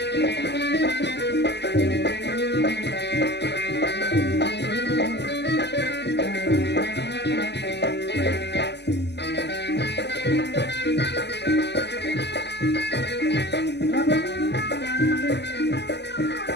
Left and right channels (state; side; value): late; right; 0.50 ms